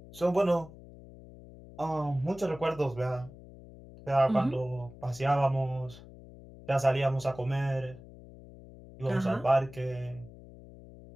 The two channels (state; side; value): noise; left; hum, 18 dB below the sound